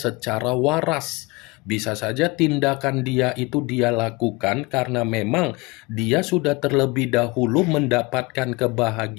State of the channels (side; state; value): right; quieter; 25.1 dB